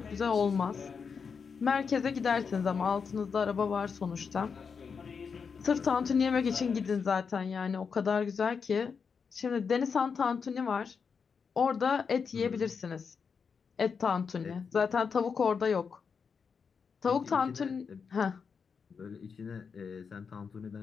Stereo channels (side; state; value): right; quieter; 5.9 dB